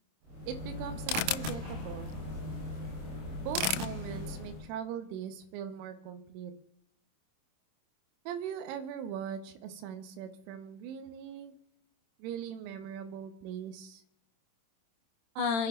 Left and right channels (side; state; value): left; late; 26 ms